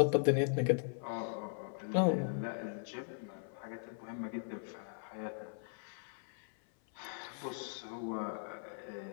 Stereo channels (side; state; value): right; silent; 52 dB below the other